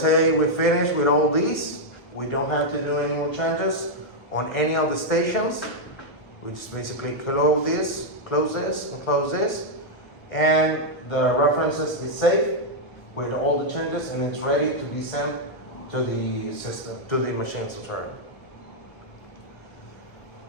say we finish with all these. We don't have to do any more changes on any of the stations. We just basically close this, and close this. And the references is saved with all the changes, and it's ready to be sent to the system, to the machine. So sorry.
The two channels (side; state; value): right; late; 1.7 ms